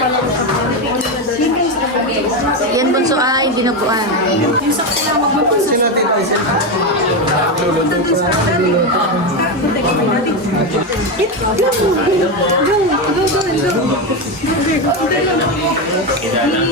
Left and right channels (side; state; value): both; normal; correlation 0.12